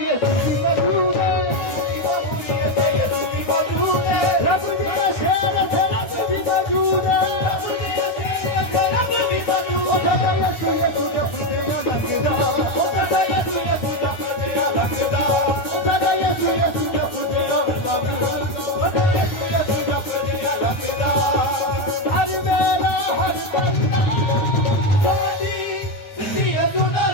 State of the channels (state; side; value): late; right; 9.6 ms